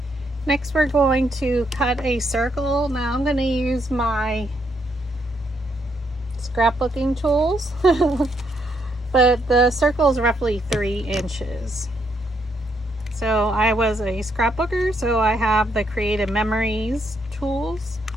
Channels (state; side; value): normal; both; correlation 0.75